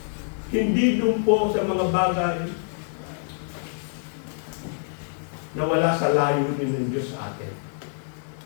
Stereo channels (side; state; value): right; silent; 61 dB below the other